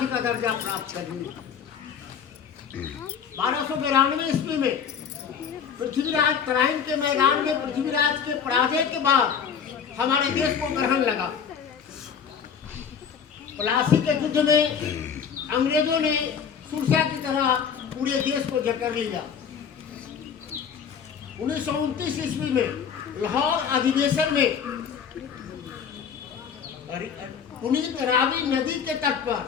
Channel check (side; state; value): right; quieter; 7.2 dB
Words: का दर्जा प्राप्त कर लिए। 1292 ईस्वी में पृथ्वीराज तराइन के मैदान में पृथ्वीराज के पराजय के बाद हमारे देश को ग्रहण लगा। प्लासी के युद्ध में अंग्रेजों ने सुरसा की तरह पूरे देश को जकड़ लिया। 1929 ईस्वी में लाहौर अधिवेशन में पुनीत रावी नदी के तट पर